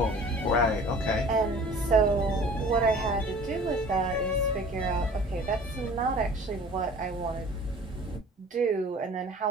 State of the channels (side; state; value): both; normal; correlation 0.46